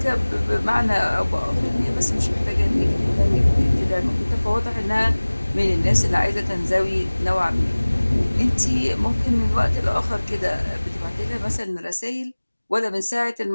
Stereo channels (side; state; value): both; inverted; correlation -1.00